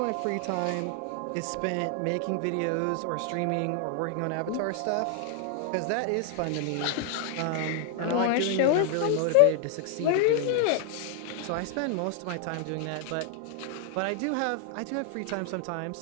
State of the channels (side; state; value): both; different; correlation 0.00